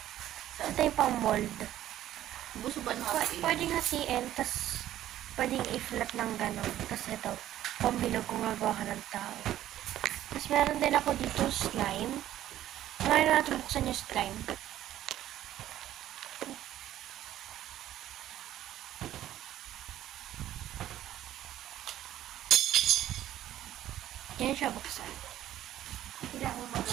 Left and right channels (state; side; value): quieter; left; 12.8 dB